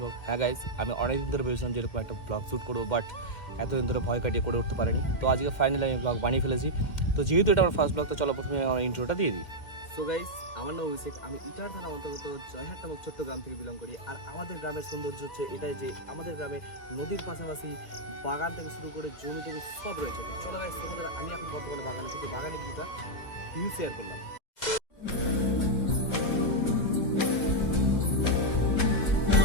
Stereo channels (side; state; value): right; late; 2.0 ms